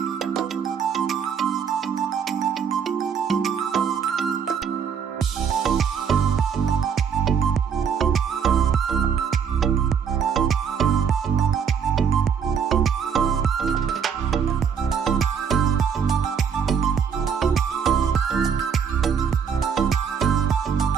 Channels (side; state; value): left; quieter; 7.0 dB